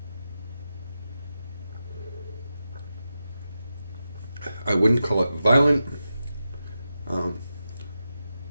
I wouldn't call it violent.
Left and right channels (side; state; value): both; inverted; correlation -0.90